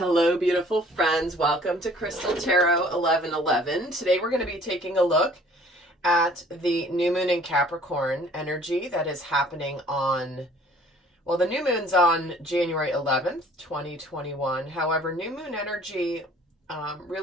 beautiful friends. Welcome to Crystal Tarot 1111. Today we're going to be taking a look at the new moon in Capricorn energy that is happening on, well, the new moon's on January 11th, 2021. However, new moon energy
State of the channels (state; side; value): normal; both; correlation 0.54